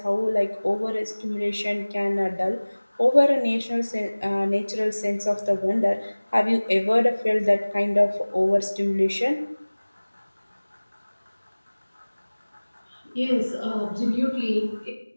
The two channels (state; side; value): inverted; both; correlation -1.00